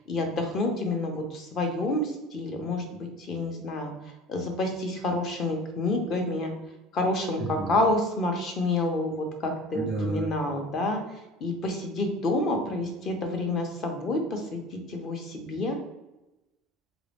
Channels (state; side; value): normal; both; correlation 0.40